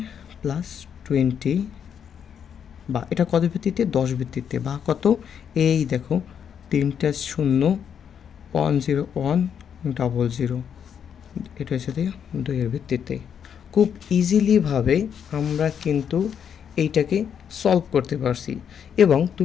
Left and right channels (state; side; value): quieter; right; 8.0 dB